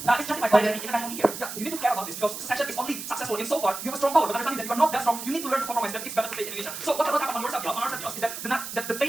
justified by the international media. Yeah, you need to care about this because secession is only successful in so far you have a strong power, but understanding that you are not that strong, you need to learn to compromise that it's better to stay in Indonesia. So what happened on your Saudi house is that the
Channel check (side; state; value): right; noise; hiss, 8 dB below the sound